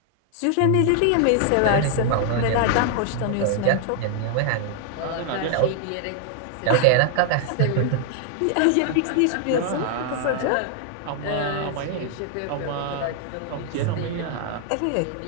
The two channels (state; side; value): different; both; correlation 0.00